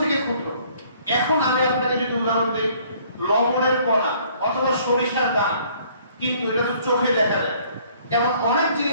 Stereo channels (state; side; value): inverted; both; correlation -0.59